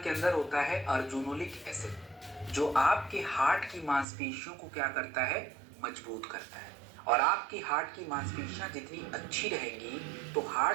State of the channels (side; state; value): left; drops out; at 4.0 s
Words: अंदर होता है अर्जुनोलिक एसिड, जो आपके हार्ट की मांसपेशियों को क्या करता है, मजबूत करता है। और आपकी हार्ट की मांसपेशियां जितनी अच्छी रहेंगी तो